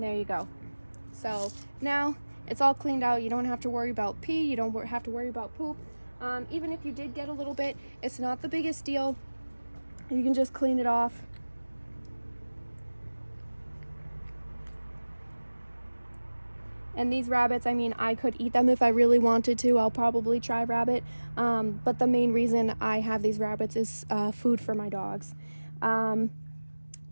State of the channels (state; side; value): inverted; both; correlation -1.00